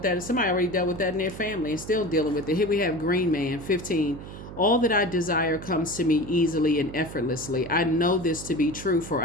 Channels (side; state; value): right; noise; hum, 12 dB below the sound